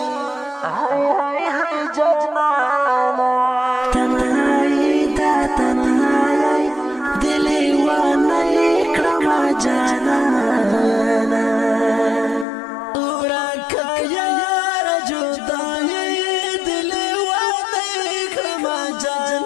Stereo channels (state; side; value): drops out; right; at 12.5 s